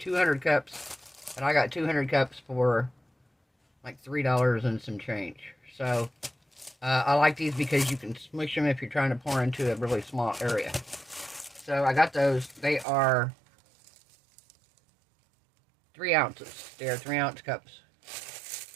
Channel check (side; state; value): left; drops out; at 12.9 s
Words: cups. And I got 200 cups for like $3 and some change. So I like these because you can smush them if you're trying to pour into a really small area. So I got those. They are 3 ounces. They are 3-ounce cups.